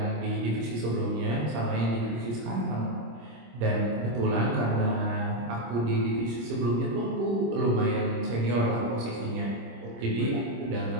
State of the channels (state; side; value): late; left; 26 ms